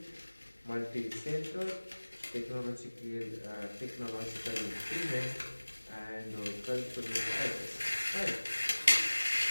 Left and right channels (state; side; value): inverted; both; correlation -1.00